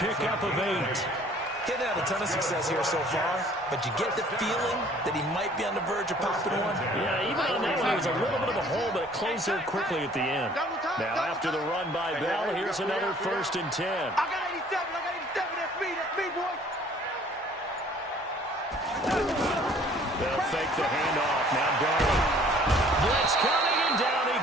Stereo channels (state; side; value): normal; both; correlation 0.55